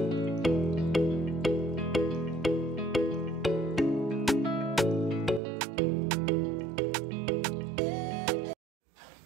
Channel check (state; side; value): drops out; left; at 5.4 s